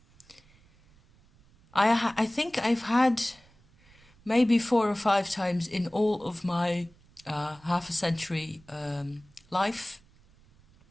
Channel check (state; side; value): noise; right; rumble, 29 dB below the sound